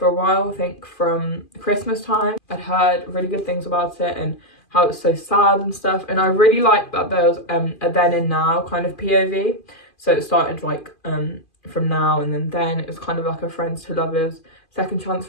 a while, I think from Christmas time. I'd heard really good things about it and how it's so sad and stuff, and I really liked that there was a then and now kind of POV. So it started like from now and then it was kind of like a friends to lovers second chance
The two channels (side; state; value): right; late; 2.5 ms